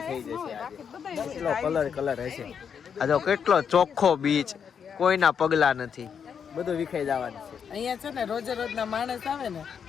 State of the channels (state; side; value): quieter; right; 7.2 dB